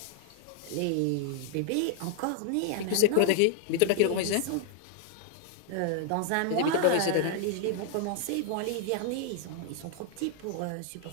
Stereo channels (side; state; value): both; different; correlation 0.00